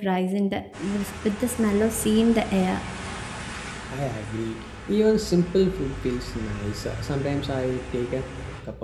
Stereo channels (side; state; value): both; identical; correlation 1.00